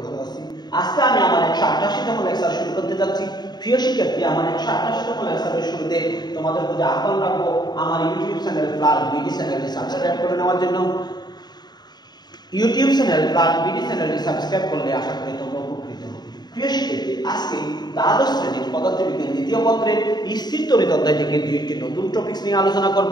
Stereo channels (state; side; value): late; right; 0.20 ms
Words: ভালো আছি। আজকে আমি আমার 188তম লেকচার শুরু করতে যাচ্ছি। প্রিয় শিক্ষার্থী, আমার 188তম লেকচারের শুরুতে তোমাদের প্রতি আহ্বান রাখবো আমার ইউটিউব চ্যানেল প্লাস বিডি চ্যানেলটি সাবস্ক্রাইব করে নেওয়ার জন্য। ইউটিউব চ্যানেল প্লাস বিডি চ্যানেলটি সাবস্ক্রাইব করলে আশা করি তোমরা উপকৃত হবে। প্রিয় শিক্ষার্থী, আজকে দ্বাদশ শ্রেণীর পদার্থবিজ্ঞান দ্বিতীয় পত্রের স্থির তড়িৎ অধ্যায় থেকে দুইটি নতুন টপিকস নিয়ে আলোচনা